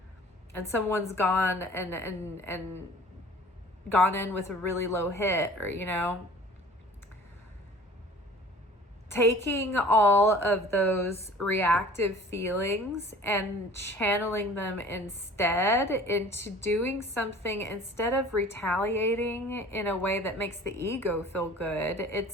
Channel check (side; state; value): both; normal; correlation 0.47